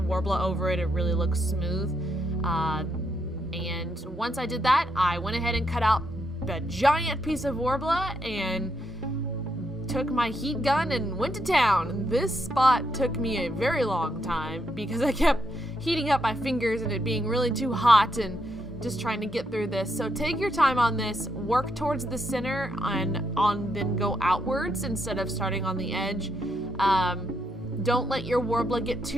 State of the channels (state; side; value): normal; both; correlation 0.78